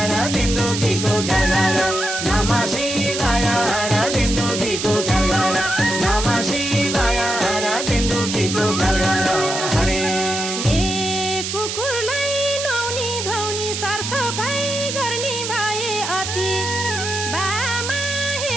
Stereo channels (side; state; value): right; noise; hiss, 4 dB below the sound